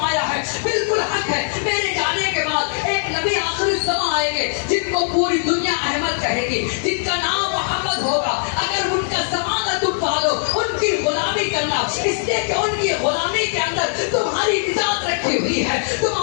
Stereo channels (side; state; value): right; silent; digital silence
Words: है बिल्कुल हक है। मेरे जाने के बाद एक नबी आखिरी ज़मां आएंगे जिनको पूरी दुनिया अहमद कहेगी, जिनका नाम मोहम्मद होगा। अगर उनका ज़माना तुम पालो, उनकी गुलामी करना, इसलिए कि उनकी गुलामी के अंदर तुम्हारी निजात रखी हुई है,